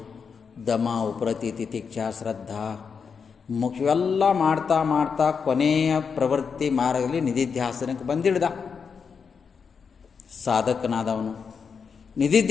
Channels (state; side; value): quieter; right; 6.0 dB